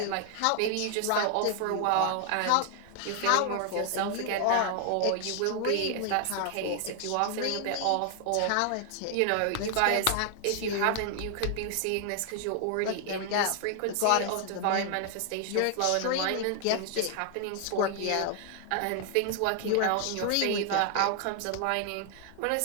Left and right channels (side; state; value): both; different; correlation 0.00